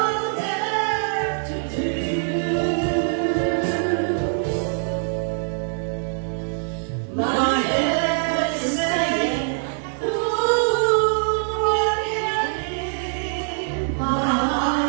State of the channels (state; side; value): silent; left; 63 dB below the other